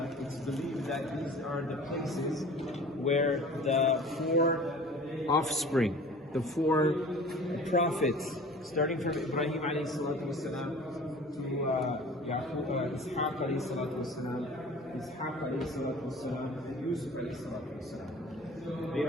it's believed that these are the places where the four offspring, the four prophets, starting from Ibrahim alayhi salatu wasalam to Yaqub, Ishaq alayhi salatu wasalam, Ishaq alayhi salatu wasalam, and Yusuf alayhi salatu wasalam. They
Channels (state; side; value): normal; both; correlation 0.43